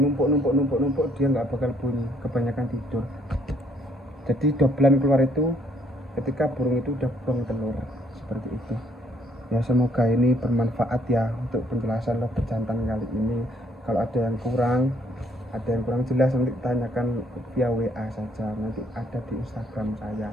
numpuk dia nggak bakal bunyi, kebanyakan tidur. Jadi dobelan keluar itu ketika burung itu udah buang telur, seperti itu ya. Semoga ini bermanfaat ya untuk penjelasan lobet jantan kali ini. Kalau ada yang kurang jelas, nanti tanyakan via WA saja, nanti ada di Instagram saya.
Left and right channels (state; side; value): normal; both; correlation 0.65